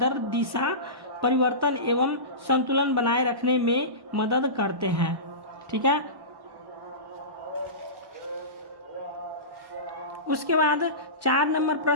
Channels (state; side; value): late; left; 1.1 ms